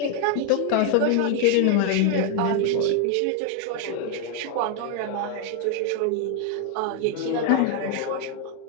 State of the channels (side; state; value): both; different; correlation 0.00